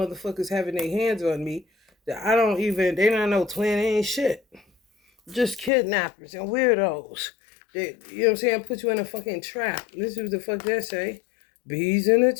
having their hands on me that I don't even, they not no twin, they ain't shit. Just kidnappers and weirdos. That, you know what I'm saying, put you in a fucking trap. This is what the fuck they say. Bees in the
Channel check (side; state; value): right; drops out; at 5.7 s